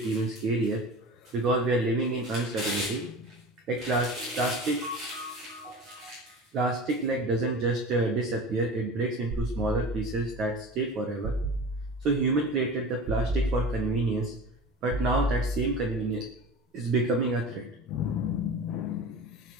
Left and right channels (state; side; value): normal; both; correlation 0.35